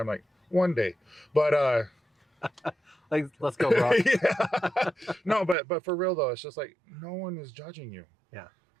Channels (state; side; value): drops out; left; at 5.6 s